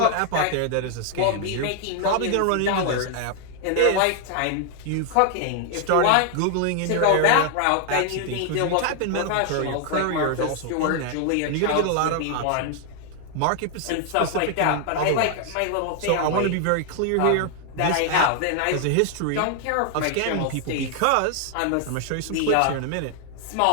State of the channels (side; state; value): both; different; correlation 0.00